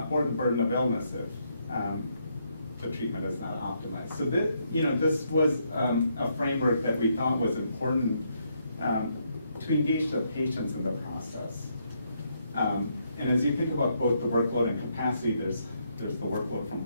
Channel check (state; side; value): inverted; both; correlation -0.76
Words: or the burden of illness if the treatment is not optimized. So this was a framework that we thought was important to engage the patients in the process. And as you think about both the workload and capacity, there's the workload from